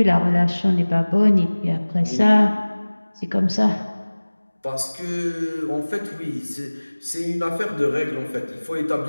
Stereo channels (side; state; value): both; inverted; correlation -1.00